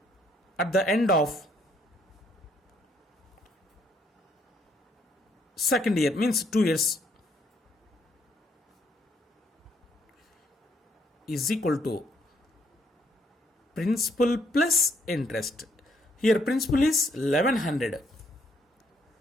at the end of second year, means 2 years, is equal to principal plus interest. Here principal is 1100.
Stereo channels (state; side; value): normal; both; correlation 0.70